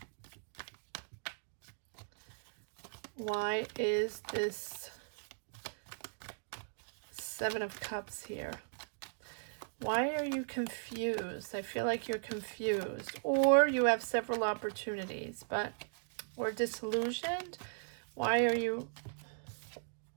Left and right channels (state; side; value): silent; left; digital silence